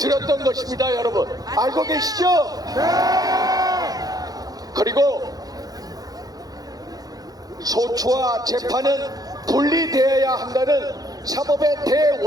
것입니다, 여러분. 알고 계시죠? 그리고 소추와 재판은 분리되어야 한다는 사법의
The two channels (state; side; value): late; left; 0.18 ms